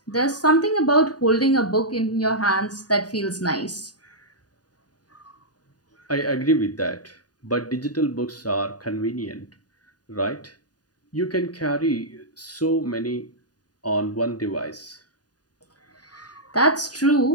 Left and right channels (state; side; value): late; right; 0.68 ms